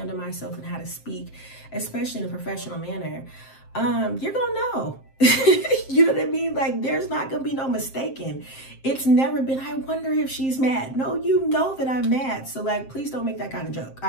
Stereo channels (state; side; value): late; right; 7.6 ms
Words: myself and how to speak, especially in a professional manner, you're gonna know. You know what I mean? Like, there's not gonna be no mistaking. It's never been, I wonder if she's mad. No, you know that I'm mad. So like, please don't make that kind of joke.